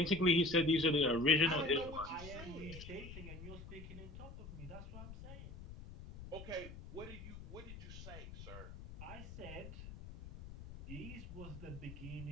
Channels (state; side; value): noise; left; rumble, 12 dB below the sound